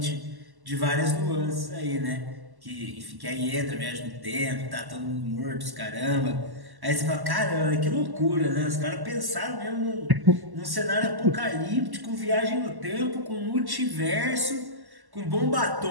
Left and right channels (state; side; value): late; left; 1.1 ms